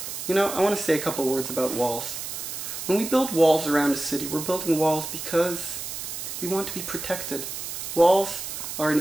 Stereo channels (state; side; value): noise; right; hiss, 7 dB below the sound